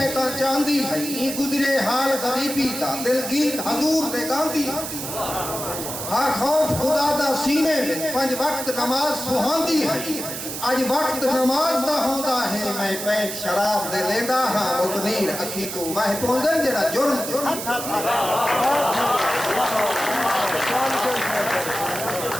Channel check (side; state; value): right; noise; hiss, 6 dB below the sound